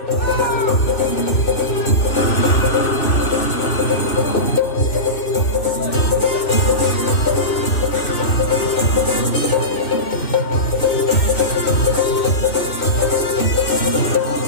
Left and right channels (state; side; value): late; right; 2.5 ms